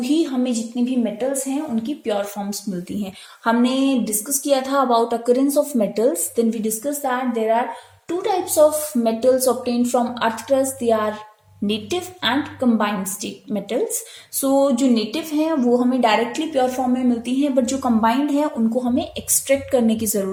हमें जितनी भी मेटल्स हैं उनकी प्योर फॉर्म्स मिलती हैं। हमने डिस्कस किया था about occurrence of metals, then we discuss that there are two types of metals obtained from earth crust, they are native and combined state metals. So जो नेटिव हैं वो हमें डायरेक्टली प्योर फॉर्म में मिलती हैं, but जो combined है उनको हमें एक्सट्रैक्ट करने की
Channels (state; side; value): identical; both; correlation 1.00